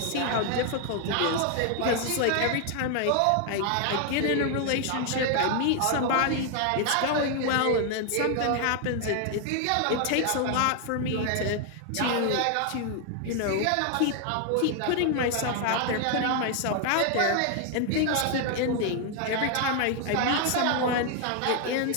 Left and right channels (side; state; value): both; different; correlation 0.00